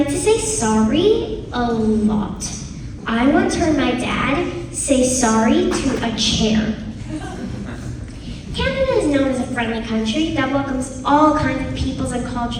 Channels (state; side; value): identical; both; correlation 1.00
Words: to say sorry a lot. I once heard my dad say sorry to a chair. Canada is known as a friendly country that welcomes all kinds of peoples and